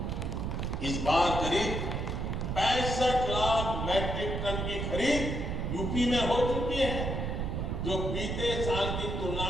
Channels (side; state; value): right; noise; rumble, 2 dB below the sound